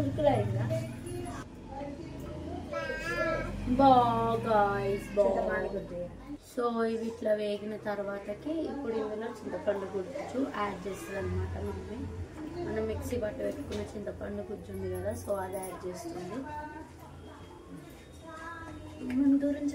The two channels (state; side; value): identical; both; correlation 1.00